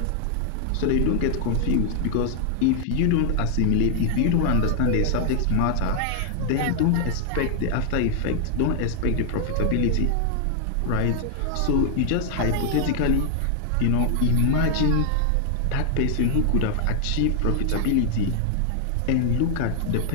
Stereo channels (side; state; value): both; different; correlation 0.00